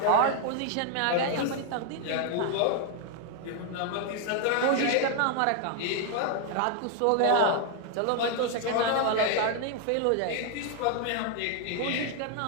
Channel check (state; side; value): different; both; correlation 0.00